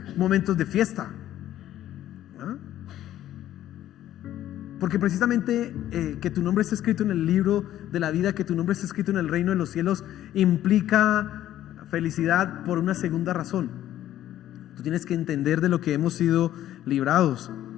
momentos de fiesta. ¿Ah? Porque precisamente que tu nombre esté escrito en el libro de la vida, que tu nombre esté escrito en el reino de los cielos, implica felicidad por una segunda razón. Tú tienes que entender de lo que hemos sido librados.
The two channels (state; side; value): quieter; right; 12.7 dB